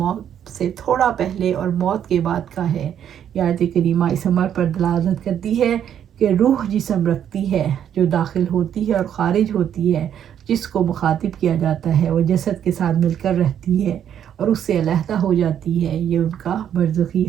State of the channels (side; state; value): left; quieter; 9.5 dB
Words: سے تھوڑا پہلے اور موت کے بعد کا ہے۔ یہ آیت کریمہ اس امر پر دلالت کرتی ہے کہ روح جسم رکھتی ہے، جو داخل ہوتی ہے اور خارج ہوتی ہے، جس کو مخاطب کیا جاتا ہے وہ جسد کے ساتھ مل کر رہتی ہے اور اس سے علیحدہ ہو جاتی ہے، یہ ان کا برزخی